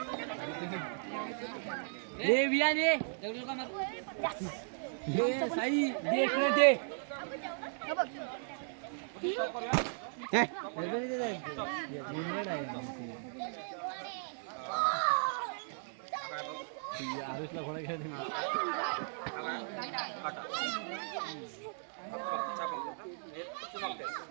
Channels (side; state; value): left; silent; 54 dB below the other